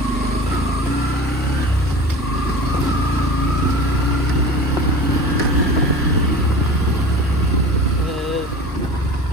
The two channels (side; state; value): both; normal; correlation 0.37